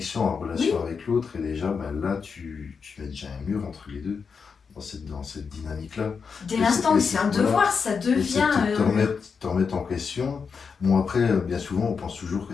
en relation avec l'autre, et déjà, là, tu mets déjà un mur entre les deux, dans cette dynamique-là. Dès l'instant où c'est un devoir, ça devient... te remettre en question. Bon, après, bien souvent, on pense toujours que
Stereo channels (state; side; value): quieter; right; 5.7 dB